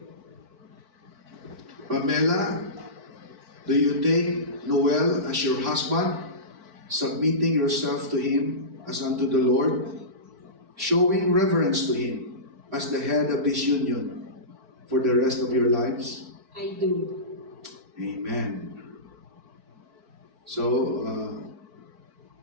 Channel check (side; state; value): left; late; 4.5 ms